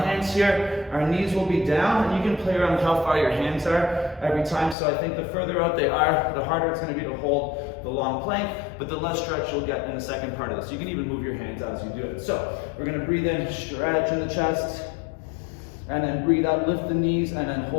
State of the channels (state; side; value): drops out; right; at 4.8 s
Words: here. Our knees will be down, and you can play around with how far your hands are every time. So I think the further out they are, the harder it's going to be to hold the long plank, but the less stretch you'll get in the second part of this. You can even move your hands as you do it. So we're going to breathe in, stretch in the chest, and then breathe out, lift the knees, and then